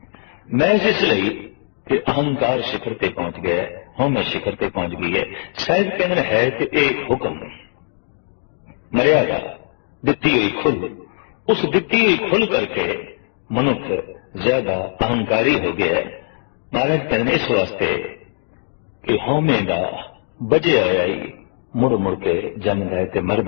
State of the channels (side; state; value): right; silent; digital silence